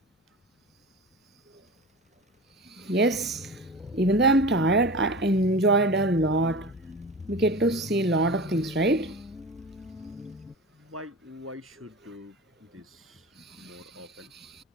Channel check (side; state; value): both; normal; correlation 0.31